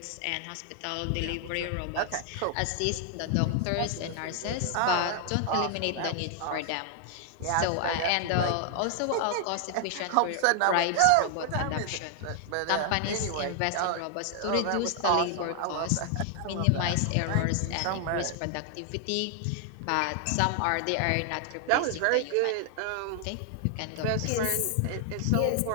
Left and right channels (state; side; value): different; both; correlation 0.00